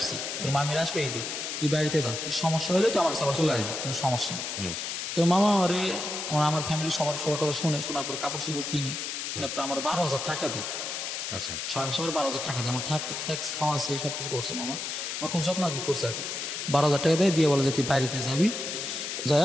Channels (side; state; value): left; noise; hiss, 4 dB below the sound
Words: তোর মামির আসবে ঈদে, তুই বাড়িতে যা, কি সমস্যা হলে তুই আমার কাছে আবার চলে আসবি, কোনো সমস্যা নেই। তো মামা আমার ফ্যামিলি সবার কথা শোনার পরে কাপড় চোপড় কিনি, কেনার পরে আমার 12,000 টাকা দেয়। আচ্ছা। 6 মাস পরে 12,000 টাকা দেয়। আমার ট্যাক্স খাওয়া আছে, সব কিছু করছে মামা, আমার খুব যত্ন করছে আর কি। 12,000 টাকা দেয়, দিয়ে বলে যে তুই বাড়িতে যাবি,